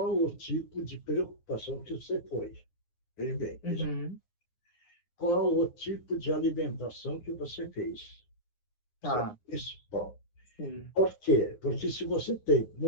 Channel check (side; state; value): right; late; 9.6 ms